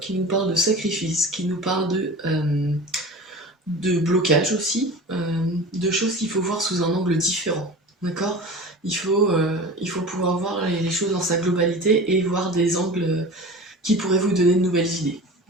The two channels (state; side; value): normal; both; correlation 0.35